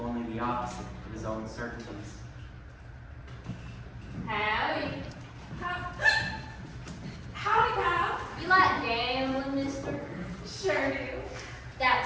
only the opposite of his own certainties. Howdy. Howdy, pal. You like gambling, mister? Sure do.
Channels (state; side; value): identical; both; correlation 1.00